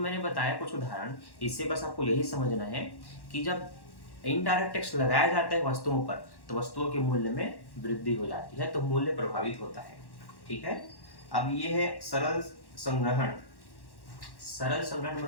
बताया कुछ उदाहरण, इससे बस आपको यही समझना है कि जब इनडायरेक्ट टैक्स लगाया जाता है वस्तुओं पर, तो वस्तुओं के मूल्य में वृद्धि हो जाती है, तो मूल्य प्रभावित होता है। ठीक है, अब ये है सरल संग्रहण। सरल संग्रहण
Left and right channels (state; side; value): late; right; 1.1 ms